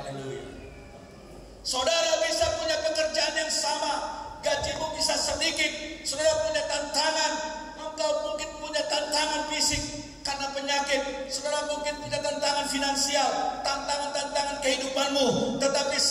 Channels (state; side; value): identical; both; correlation 1.00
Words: Saudara bisa punya pekerjaan yang sama, gajimu bisa sedikit, saudara punya tantangan, engkau mungkin punya tantangan fisik karena penyakit, saudara mungkin punya tantangan finansial, tantangan kehidupanmu. Tetapi